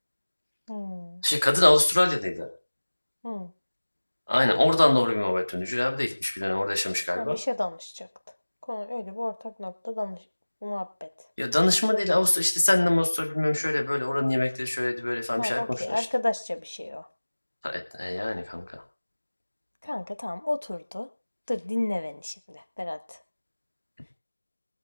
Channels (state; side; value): inverted; both; correlation -1.00